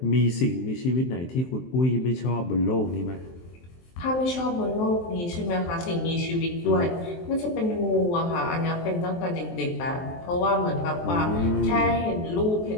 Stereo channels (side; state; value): right; late; 23 ms